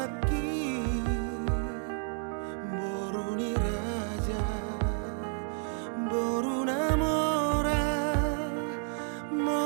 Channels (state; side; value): silent; left; 57 dB below the other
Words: boruni raja boruna mora